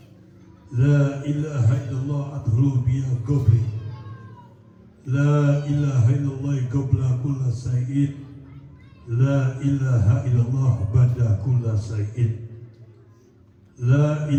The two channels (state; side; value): identical; both; correlation 1.00